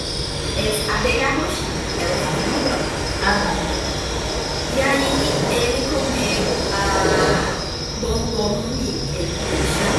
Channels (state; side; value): identical; both; correlation 1.00